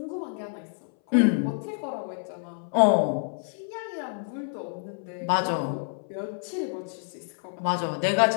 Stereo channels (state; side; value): silent; right; 59 dB below the other